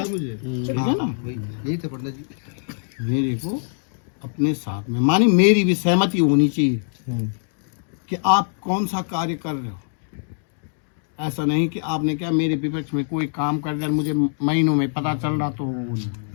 है ना? यही तो पंडित जी, मेरे को अपने साथ में, मानी मेरी भी सहमति होनी चाहिए कि आप कौन सा कार्य कर रहे हो। ऐसा नहीं कि आपने क्या मेरे विपक्ष में कोई काम कर दिया, मुझे महीनों में पता चल रहा, तो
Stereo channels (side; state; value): right; silent; digital silence